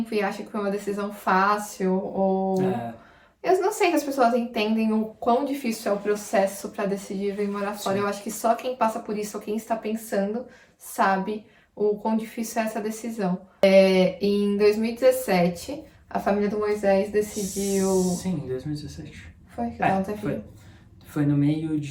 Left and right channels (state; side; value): identical; both; correlation 1.00